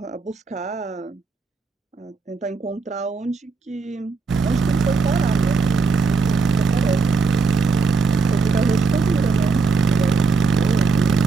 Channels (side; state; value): left; quieter; 4.5 dB